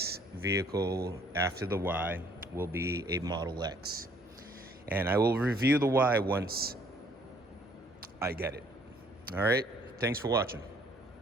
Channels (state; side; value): normal; both; correlation 0.61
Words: vehicle after the Y will be a Model X. And I will review the Y once I get it. All right, thanks for watching.